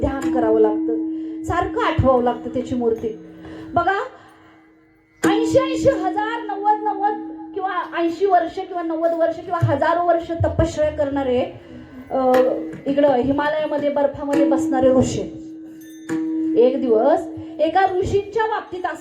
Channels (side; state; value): both; identical; correlation 1.00